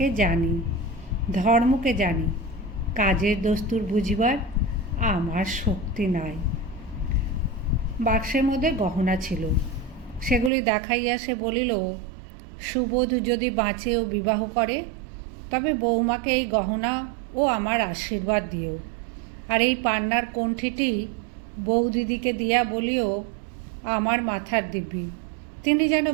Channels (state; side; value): drops out; left; at 10.5 s